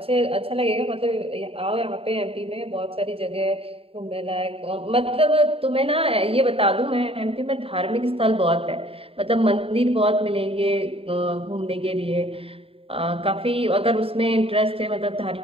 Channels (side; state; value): left; late; 0.27 ms